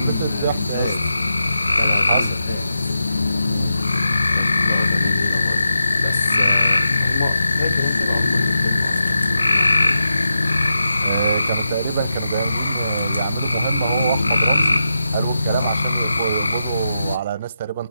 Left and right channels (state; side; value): inverted; both; correlation -0.88